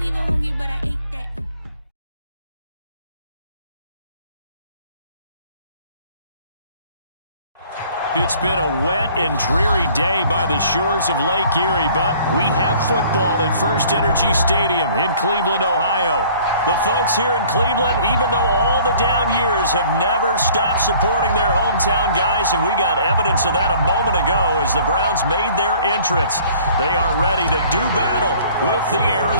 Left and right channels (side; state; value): both; inverted; correlation -0.53